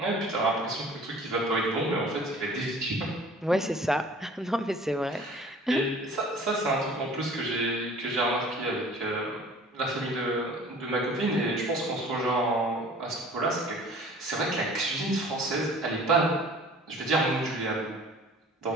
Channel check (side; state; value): both; normal; correlation 0.47